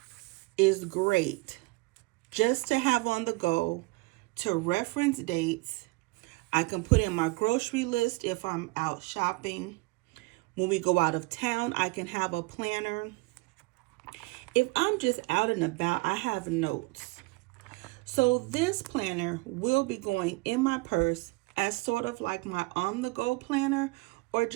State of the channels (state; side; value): quieter; left; 24.1 dB